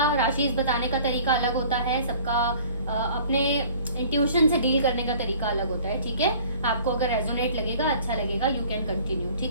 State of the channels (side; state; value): both; inverted; correlation -0.50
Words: राशि बताने का तरीका अलग होता है, सबका अपने इंट्यूशन से डील करने का तरीका अलग होता है, ठीक है। आपको अगर रेजोनेट लगेगा, अच्छा लगेगा, यू कैन कंटिन्यू,